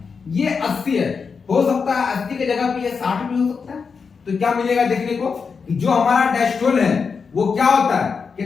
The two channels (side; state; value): right; quieter; 5.5 dB